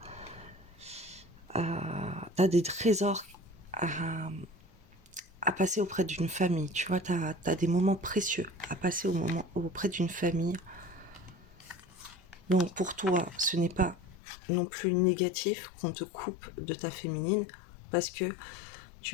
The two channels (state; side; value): drops out; right; at 14.2 s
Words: t'as des trésors à, à passer auprès d'une famille. Tu vois, t'as des moments précieux à passer auprès d'une famille. Donc, pour toi, ce n'est pas non plus négatif qu'on te coupe de ta féminine parce que